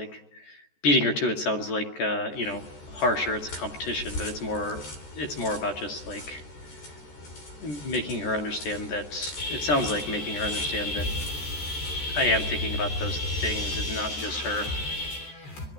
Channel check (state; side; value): late; right; 14 ms